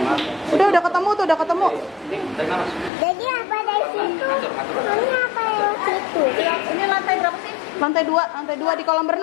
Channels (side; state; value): right; drops out; at 2.9 s